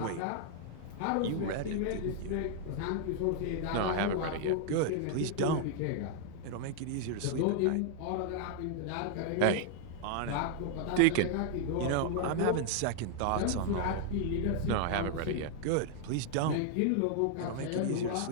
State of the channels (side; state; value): both; different; correlation 0.00